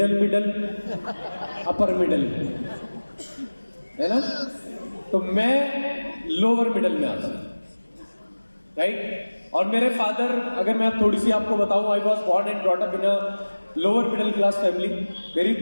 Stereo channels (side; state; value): both; inverted; correlation -1.00